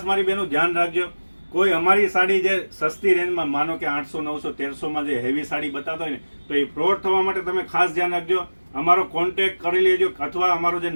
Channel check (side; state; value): both; inverted; correlation -1.00